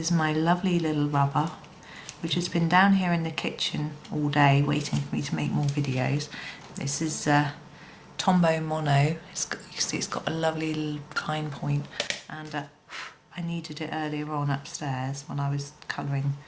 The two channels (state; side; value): identical; both; correlation 1.00